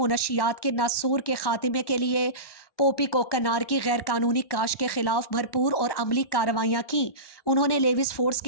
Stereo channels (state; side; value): late; right; 1.1 ms